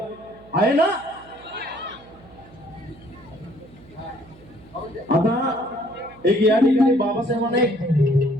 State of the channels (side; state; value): right; noise; hum, 24 dB below the sound